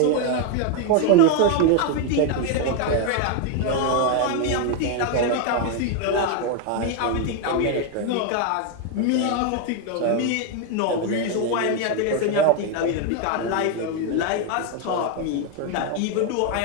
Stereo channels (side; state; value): both; different; correlation 0.01